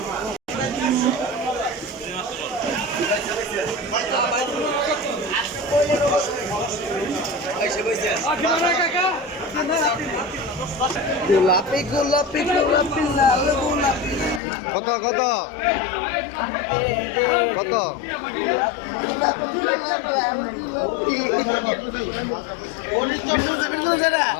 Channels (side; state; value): right; drops out; at 14.4 s